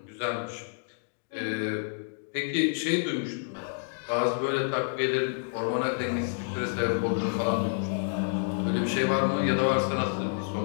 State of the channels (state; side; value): silent; right; digital silence